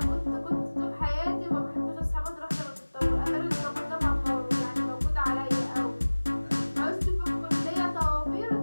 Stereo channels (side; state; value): both; inverted; correlation -1.00